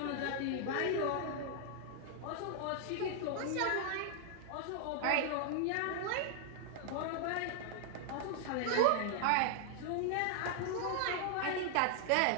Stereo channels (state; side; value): different; both; correlation 0.00